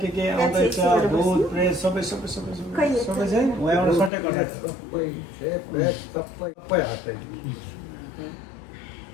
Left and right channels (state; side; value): drops out; right; at 4.1 s